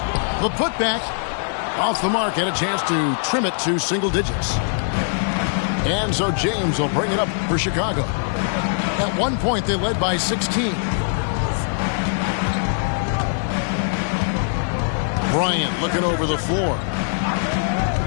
the putback. Off the mark, and a chance to trim it to single digits. And so James will bring it up for Chicago. At one point, they led by 16. Bryant looking over the floor.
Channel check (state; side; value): silent; right; 59 dB below the other